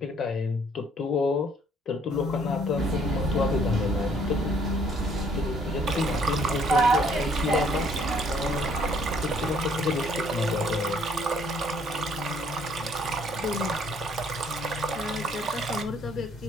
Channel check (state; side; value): normal; both; correlation 0.63